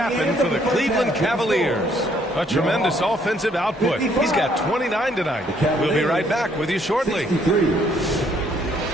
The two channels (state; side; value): normal; both; correlation 0.66